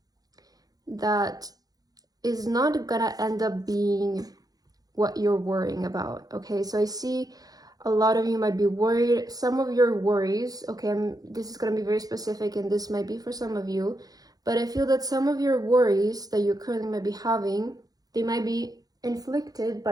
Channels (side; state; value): left; late; 0.18 ms